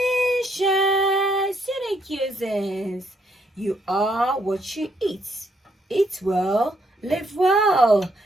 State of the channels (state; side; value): normal; both; correlation 0.73